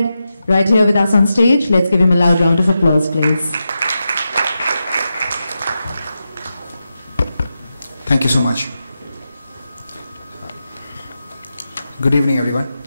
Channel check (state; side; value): inverted; both; correlation -0.89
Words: Right here with us on stage, let's give him a loud round of applause, please. Thank you so much. Good evening, everyone.